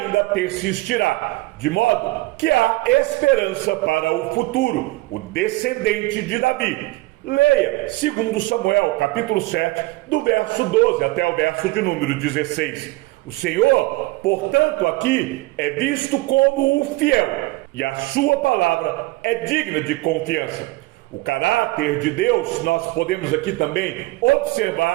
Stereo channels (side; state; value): left; quieter; 20.9 dB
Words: persistirá, de modo que há esperança para o futuro, o descendente de Davi. Leia 2 Samuel, capítulo 7, do verso 12 até o verso de número 16. O Senhor, portanto, aqui é visto como o fiel, e a sua palavra é digna de confiança. O caráter de Deus, nós podemos aqui também